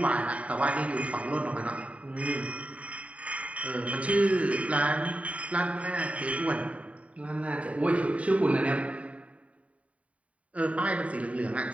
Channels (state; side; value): late; left; 0.067 ms